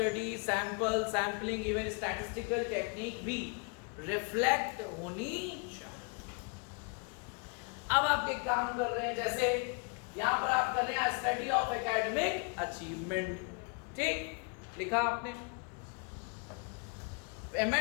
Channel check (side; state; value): right; quieter; 35.7 dB